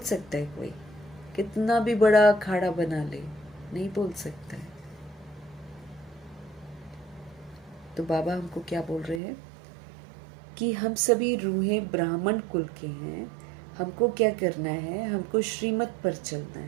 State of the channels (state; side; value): drops out; left; at 9.2 s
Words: सकता है कोई? कितना भी बड़ा अखाड़ा बना ले, नहीं बोल सकता है। तो बाबा हमको क्या बोल रहे हैं कि हम सभी रूहें ब्राह्मण कुल के हैं। हमको क्या करना है? हमको श्रीमत पर चलना